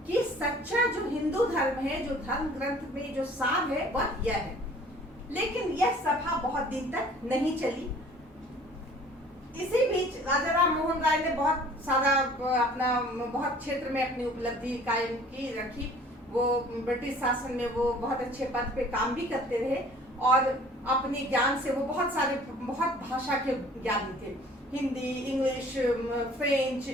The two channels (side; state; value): both; normal; correlation 0.51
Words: कि सच्चा जो हिंदू धर्म है, जो धर्म ग्रंथ में जो सार है वह यह है। लेकिन यह सभा बहुत दिन तक नहीं चली। इसी बीच राजा राम मोहन राय ने बहुत सारा अपना बहुत क्षेत्र में अपनी उपलब्धि कायम की रखी। वो ब्रिटिश शासन में वो बहुत अच्छे पद पे काम भी करते रहे, और अपने ज्ञान से वो बहुत भाषा के ज्ञानी थे। Hindi, English, French,